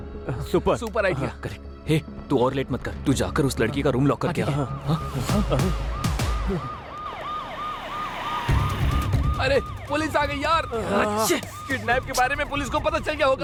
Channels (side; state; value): both; identical; correlation 1.00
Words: सुपर आइडिया। करेक्ट। हे, तू और लेट मत कर। तू जाकर उस लड़की का रूम लॉक करके आ। अरे पुलिस आ गई यार। किडनैप के बारे में पुलिस को पता चल गया